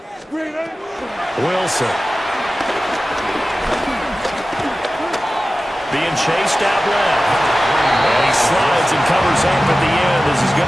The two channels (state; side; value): normal; both; correlation 0.95